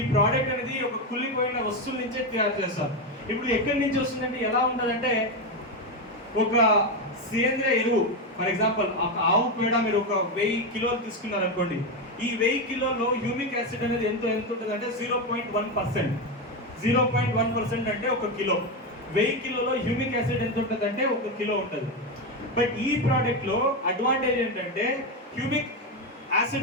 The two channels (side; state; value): both; normal; correlation 0.11